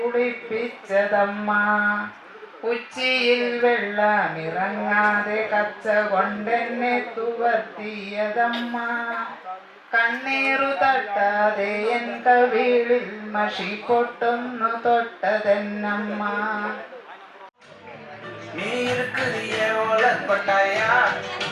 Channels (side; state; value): both; identical; correlation 1.00